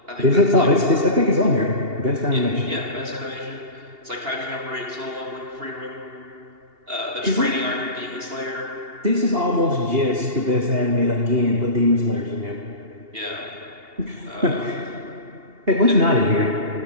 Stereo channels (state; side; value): late; left; 2.8 ms